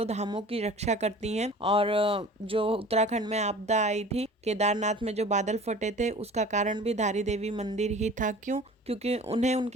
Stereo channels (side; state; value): both; normal; correlation 0.43